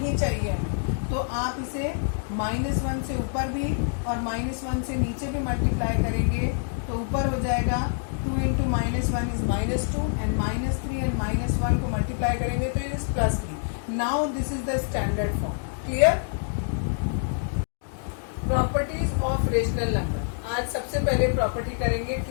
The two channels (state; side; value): silent; right; digital silence